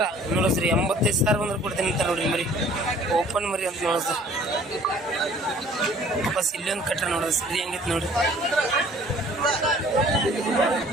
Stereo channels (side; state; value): both; normal; correlation 0.53